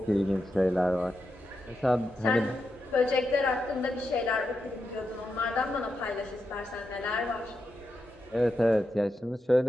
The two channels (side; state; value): both; normal; correlation 0.86